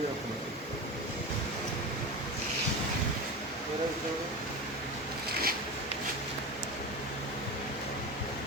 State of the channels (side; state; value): both; normal; correlation 0.25